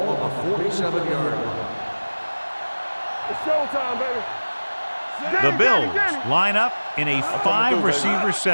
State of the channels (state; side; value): inverted; both; correlation -1.00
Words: on the 47-yard line. It's showtime, baby. The Bills line up in a 5-receiver